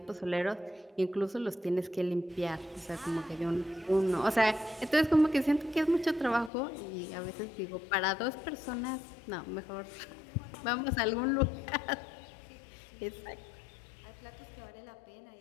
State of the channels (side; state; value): right; drops out; at 6.5 s